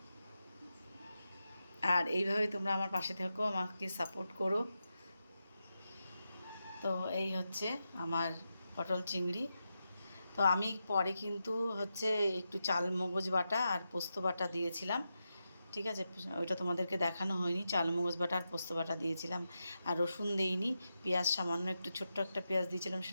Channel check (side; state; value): both; inverted; correlation -0.88